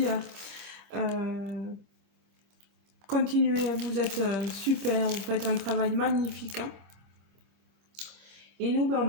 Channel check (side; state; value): left; late; 25 ms